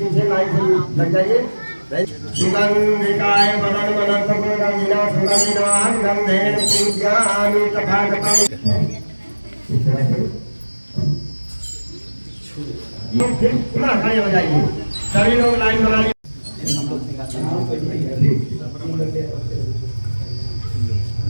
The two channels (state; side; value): inverted; both; correlation -1.00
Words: लाइन से लग जाइए। सुगंधिकाय बदन बदन सुगंधिना सुगंधिना गंधेन पूज्यामि तथागतम्। फिर पुनः खड़े हो जाइए, सभी लोग लाइन बना लीजिए।